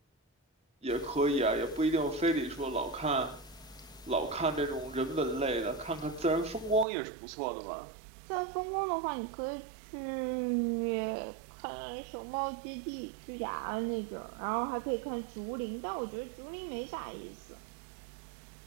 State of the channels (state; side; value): drops out; left; at 6.9 s